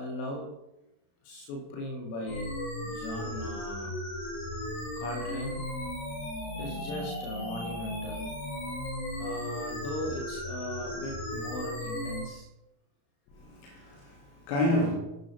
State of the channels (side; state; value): right; late; 35 ms